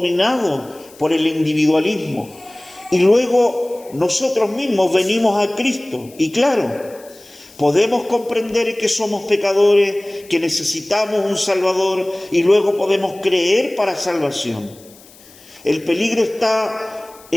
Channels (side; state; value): left; noise; hiss, 24 dB below the sound